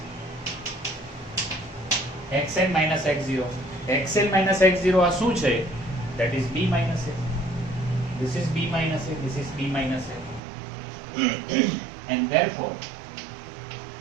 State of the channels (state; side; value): drops out; left; at 10.4 s